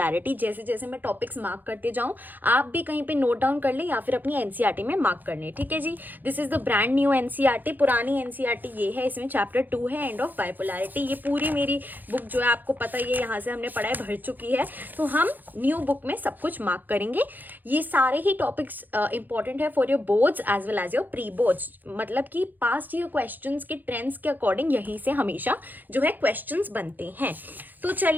जैसे जैसे मैं टॉपिक्स मार्क करते जाऊँ आप भी कहीं पे नोट डाउन कर लें या फिर अपनी एनसीईआरटी में मार्क कर लें। ठीक है जी, this is the brand new NCERT. पुरानी एनसीईआरटी ये है, इसमें चैप्टर 2 है एंड ऑफ बाइपोलैरिटी। ये पूरी मेरी बुक जो है आपको पता ही है, यहाँ से हमने पढ़ाई भर चुकी है, तो हम न्यू बुक में सब कुछ मार्क करेंगे। ये सारे ही टॉपिक्स इंपॉर्टेंट है for your boards as well as your pre boards. मतलब कि पास्ट ईयर क्वेश्चंस के ट्रेंड्स के अकॉर्डिंग यहीं से हमेशा जो है क्वेश्चंस बनते हैं। तो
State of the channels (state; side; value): late; left; 0.086 ms